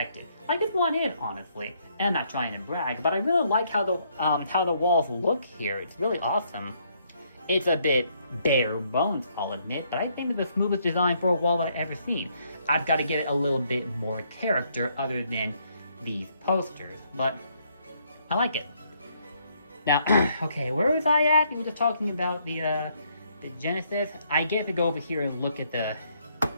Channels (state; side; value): inverted; both; correlation -0.71